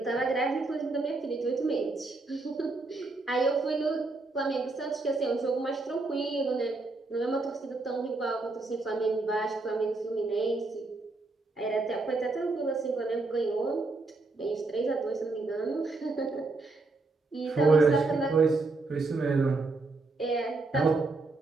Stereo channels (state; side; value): quieter; left; 3.5 dB